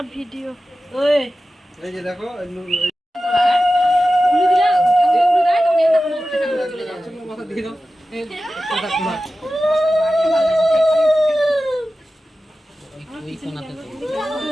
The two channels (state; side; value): normal; both; correlation 0.94